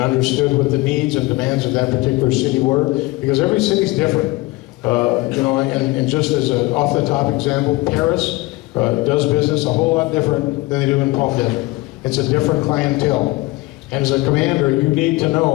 understood what the needs and demands of that particular city were, because every city's different. And just as an off-the-top example, Paris does business a whole lot different than they do in Palm Desert. It's a different clientele. And as a commander, you need to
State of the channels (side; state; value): right; quieter; 21.4 dB